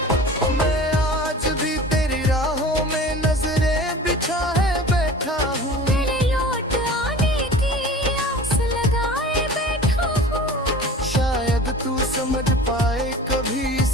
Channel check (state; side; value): normal; both; correlation 0.40